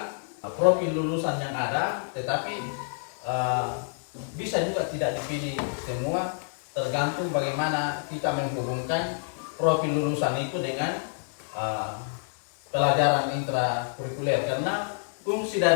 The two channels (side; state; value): right; silent; digital silence